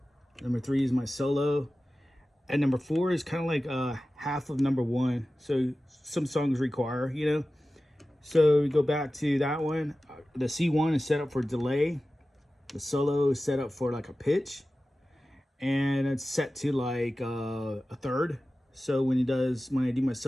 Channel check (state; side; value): normal; both; correlation 0.95